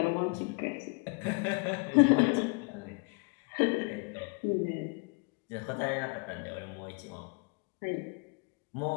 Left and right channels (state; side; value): quieter; right; 31.7 dB